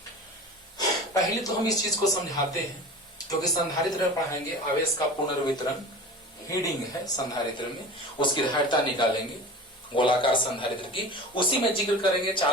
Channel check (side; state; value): both; normal; correlation 0.35